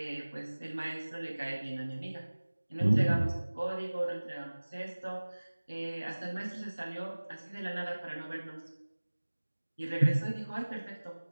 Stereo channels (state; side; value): inverted; both; correlation -1.00